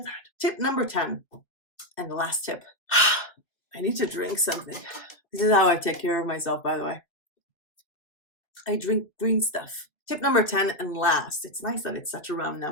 that? Tip number 10, and the last tip. I need to drink something. This is how I take care of myself, by the way. I drink green stuff. Tip number 10 and last. It's nice that it's such a round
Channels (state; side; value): late; right; 2.4 ms